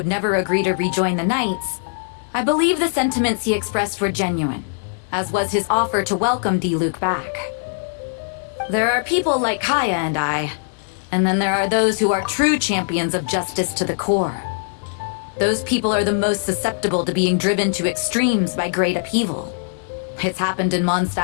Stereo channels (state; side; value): silent; right; digital silence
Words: never agree to rejoin the Knights, I believe the sentiments he expressed were genuine, as was his offer to welcome Diluc back. There are people like Kaya and I, and then there are those who are true champions of justice to the core. Those people are the most susceptible to being driven to extremes by great upheaval. It's happened in